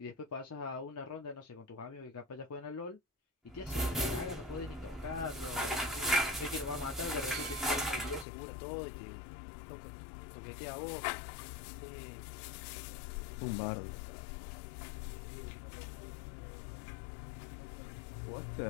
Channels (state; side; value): drops out; right; at 8.2 s